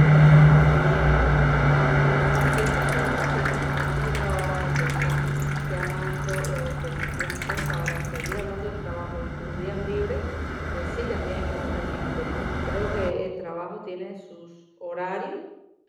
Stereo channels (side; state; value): both; identical; correlation 1.00